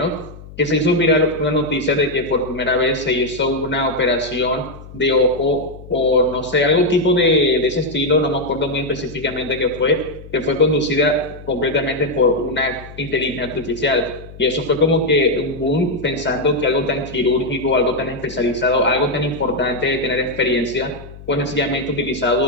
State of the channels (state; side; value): noise; left; hum, 17 dB below the sound